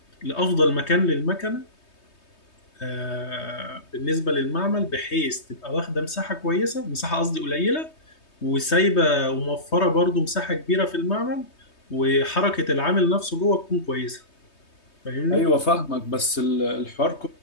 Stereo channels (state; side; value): late; right; 3.2 ms